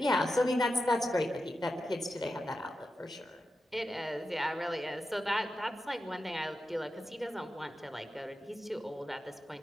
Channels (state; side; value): normal; both; correlation 0.90